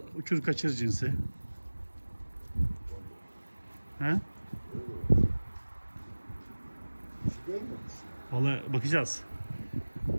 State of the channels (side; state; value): both; inverted; correlation -1.00